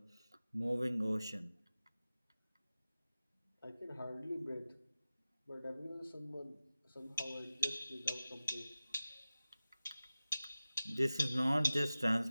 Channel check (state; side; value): inverted; both; correlation -0.96